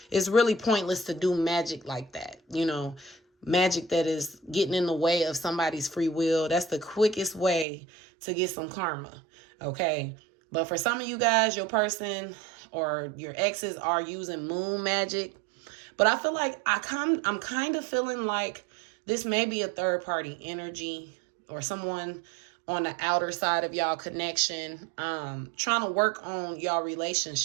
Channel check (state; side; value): drops out; left; at 7.7 s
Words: really pointless to do magic like that, magic that is getting in the way of somebody's free will. That's the quickest way to get some karma, okay? But for some of you guys, your person or your exes are using moon magic. But I feel like I'm kind of feeling like this may be a third party energy, or someone on the outer side of y'all connection, trying to work on y'all